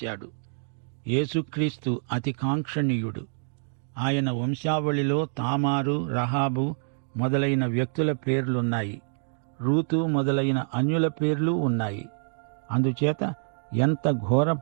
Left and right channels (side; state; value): left; silent; digital silence